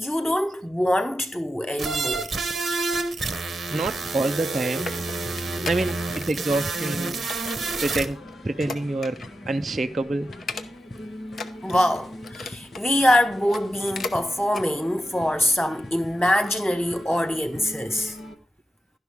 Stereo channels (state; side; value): normal; both; correlation 0.89